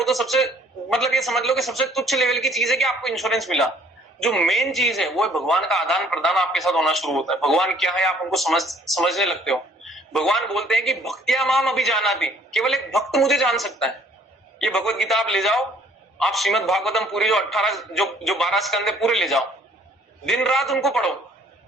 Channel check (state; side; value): normal; both; correlation 0.60